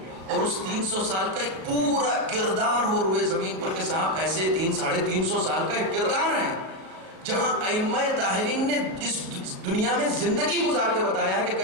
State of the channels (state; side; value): late; left; 37 ms